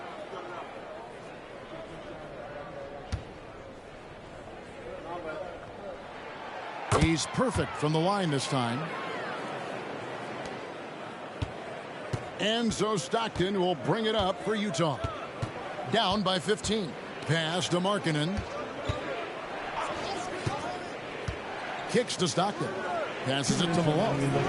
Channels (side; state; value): both; identical; correlation 1.00